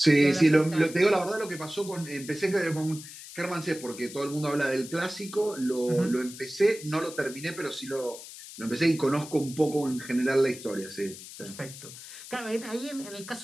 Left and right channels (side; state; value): left; noise; hiss, 14 dB below the sound